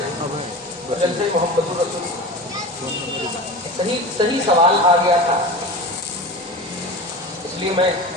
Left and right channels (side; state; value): both; normal; correlation 0.31